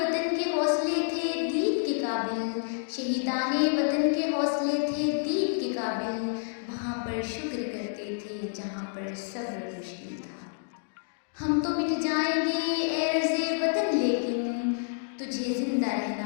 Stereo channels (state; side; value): silent; right; digital silence